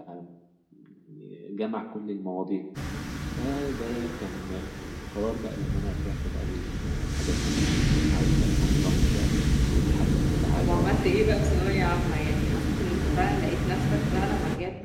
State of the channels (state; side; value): identical; both; correlation 1.00